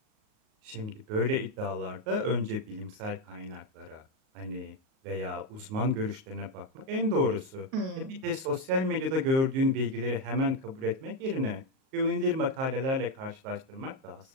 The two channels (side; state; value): left; late; 38 ms